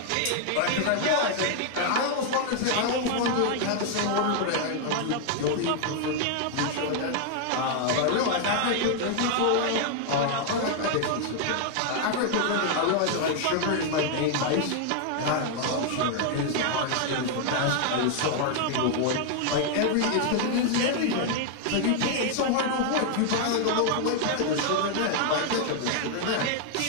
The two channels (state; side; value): different; both; correlation 0.00